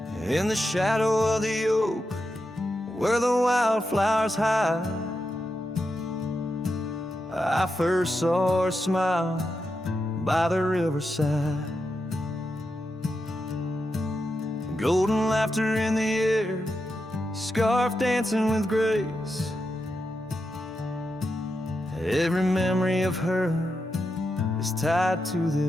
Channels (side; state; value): both; normal; correlation 0.87